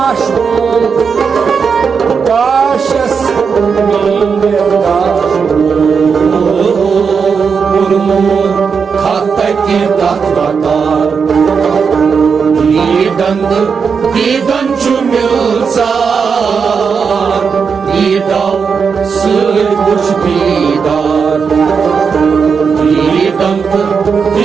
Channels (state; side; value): quieter; left; 5.9 dB